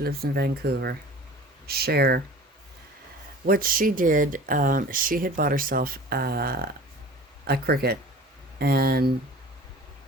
lives in Vancouver, Cher. What she did, she had bought herself a Cricut, and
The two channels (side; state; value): both; normal; correlation 0.42